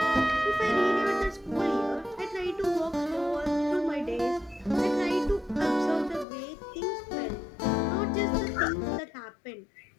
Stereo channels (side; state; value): right; drops out; at 6.2 s